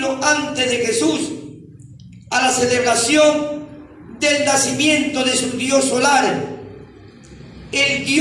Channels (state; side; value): identical; both; correlation 1.00